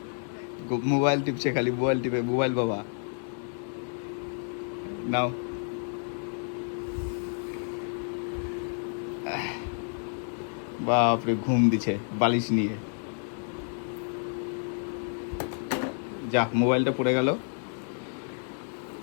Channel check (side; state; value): right; silent; 58 dB below the other